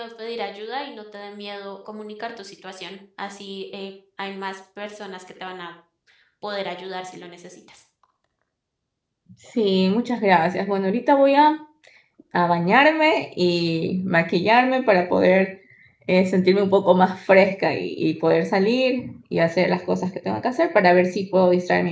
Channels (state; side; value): identical; both; correlation 1.00